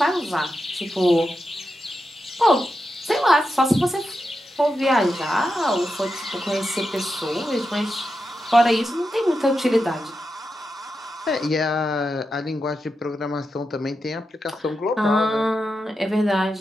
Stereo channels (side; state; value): both; normal; correlation 0.88